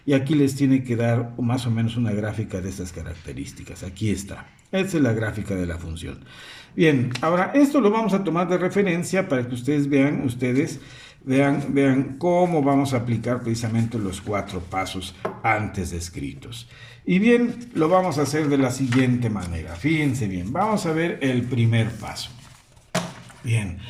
y aquí les tiene que dar más o menos una gráfica de estas características. Aquí está. Esta es la gráfica de la función. Bien, ahora esto lo vamos a tomar de referencia para que ustedes vean cómo vamos a aplicar precisamente los 4 pasos antes descritos. Y bien, lo vamos a hacer de la siguiente manera. Fíjense bien, vamos a ver el primer paso. Bien,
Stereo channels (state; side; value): identical; both; correlation 1.00